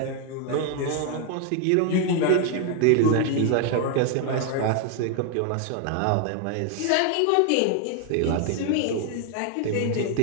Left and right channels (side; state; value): both; different; correlation 0.01